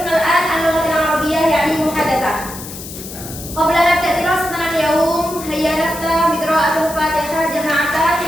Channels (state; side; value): noise; left; hiss, 12 dB below the sound